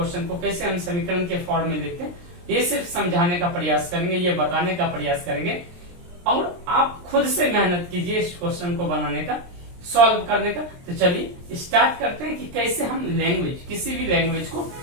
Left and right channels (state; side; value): late; left; 23 ms